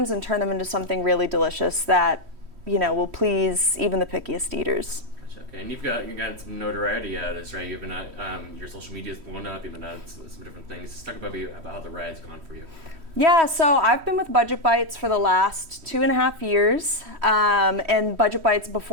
and turn them into something really delicious that, will please even the pickiest eaters. Gotcha. Okay, and you've got some notoriety out of this, right? You've been your social media's blown up. You've been on some different things. Just talk about how the ride's gone for you. Yeah, so I've been with Budget Bytes for the last 2.5 years, and Budget Bytes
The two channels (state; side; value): late; left; 3.1 ms